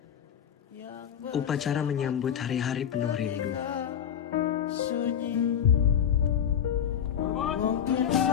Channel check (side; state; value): right; quieter; 8.8 dB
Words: upacara menyambut hari-hari penuh rindu. sunyi. Mungkin